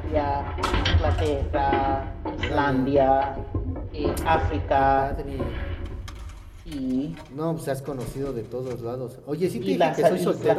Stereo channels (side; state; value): both; identical; correlation 1.00